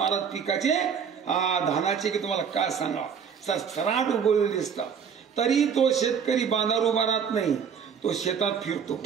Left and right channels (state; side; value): quieter; left; 7.0 dB